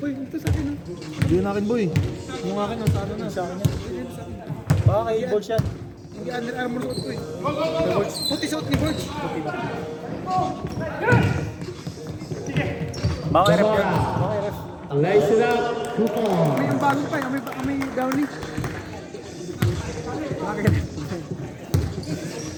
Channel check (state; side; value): identical; both; correlation 1.00